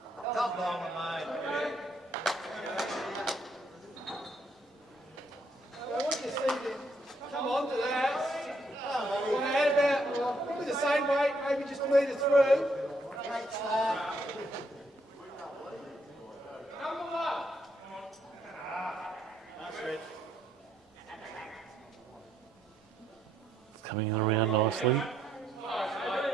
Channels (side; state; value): both; normal; correlation 0.73